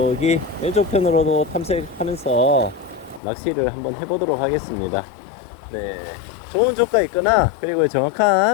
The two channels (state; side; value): drops out; right; at 3.2 s